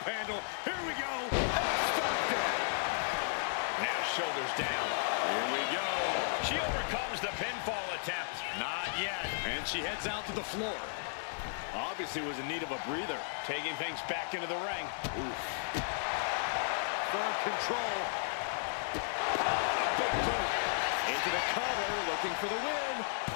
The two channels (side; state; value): right; silent; 55 dB below the other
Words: handle. Here we go. Now shoulders down. Here we go. She overcomes the pinfall attempt. Not yet. And she heads out to the floor. Obviously was in need of a breather. Taking things back into the ring. Oof. Firm control. A big boot. Into the cover, looking for the win.